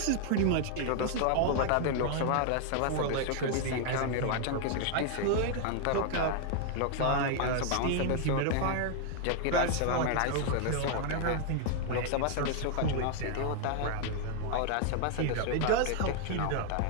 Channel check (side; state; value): both; different; correlation 0.00